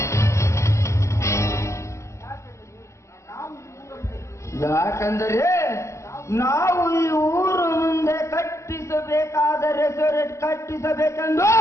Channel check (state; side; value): late; right; 0.14 ms